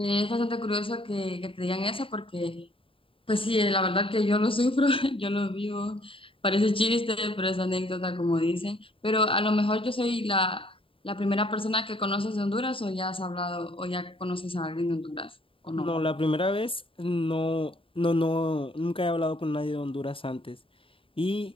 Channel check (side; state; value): right; late; 0.26 ms